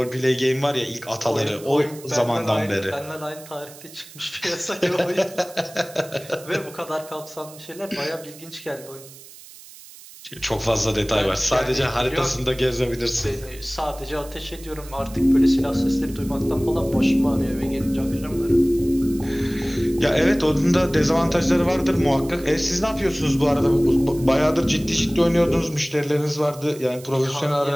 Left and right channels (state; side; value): noise; right; hiss, 19 dB below the sound